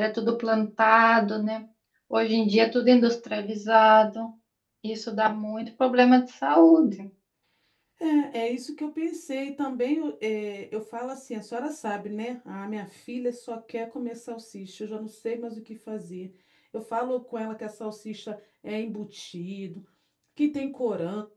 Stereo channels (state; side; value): identical; both; correlation 1.00